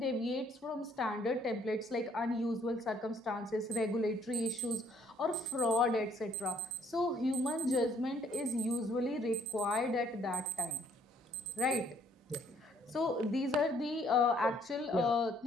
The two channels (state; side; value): normal; both; correlation 0.63